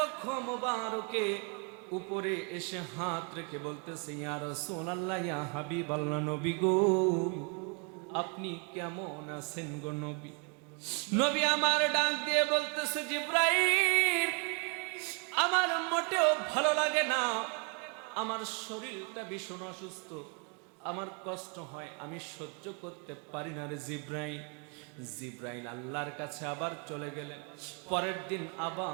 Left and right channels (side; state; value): left; quieter; 36.4 dB